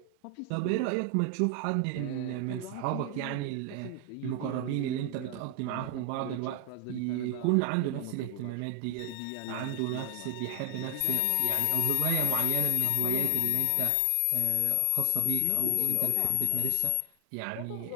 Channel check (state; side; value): different; both; correlation 0.00